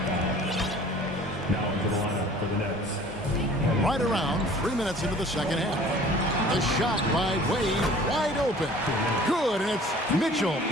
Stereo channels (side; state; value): both; normal; correlation 0.49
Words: Now into the lineup for the Nets. Right around 3 minutes into the second half. The shot by Wade, wide open. Good, and it's Mitchell